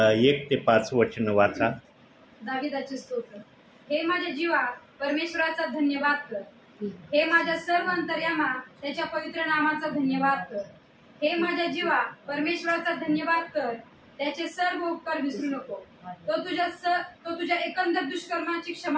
ते 5 वचन वाचा. दाविदाचे स्तोत्र. हे माझ्या जीवा परमेश्वराचा धन्यवाद कर. हे माझ्या सर्व अंतर्यामा त्याच्या पवित्र नामाचा धन्यवाद कर. हे माझ्या जीवा परमेश्वराचा धन्यवाद कर. त्याचे सर्व उपकार विसरू नको. तो तुझ्या एकंदर दुष्कर्माची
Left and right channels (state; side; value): identical; both; correlation 1.00